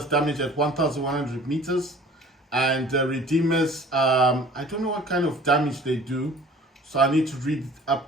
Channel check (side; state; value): both; normal; correlation 0.48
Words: damage at 1,100 meters, and Redeemers, I don't know what kind of damage they do, so I need to read